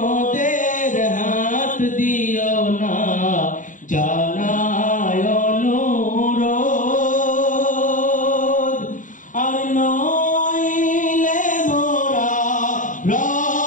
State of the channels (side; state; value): right; late; 0.38 ms